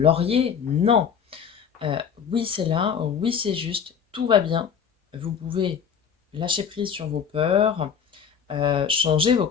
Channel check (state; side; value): quieter; right; 7.3 dB